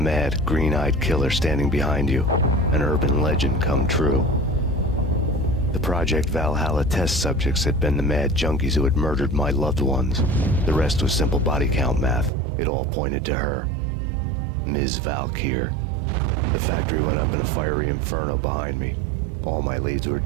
green-eyed killer standing behind you. An urban legend come true. The Project Valhalla test subjects had been the mad junkies who had murdered my loved ones. The rest was simple body count math. It all pointed to her. Ms. Valkyr. The factory went up in a fiery inferno behind me. All my leads were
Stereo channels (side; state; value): left; drops out; at 12.3 s